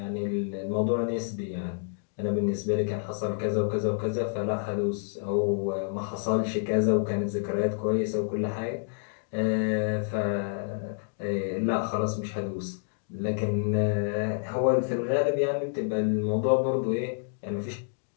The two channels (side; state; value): right; silent; digital silence